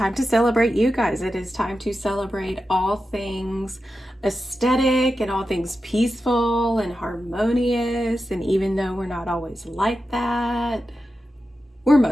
to celebrate you guys. It is time to celebrate all things aesthetic and all things peaceful and harmonious. And even though we're not always like that, we're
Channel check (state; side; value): normal; both; correlation 0.91